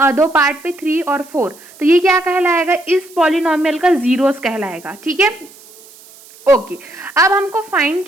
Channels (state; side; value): noise; right; hiss, 23 dB below the sound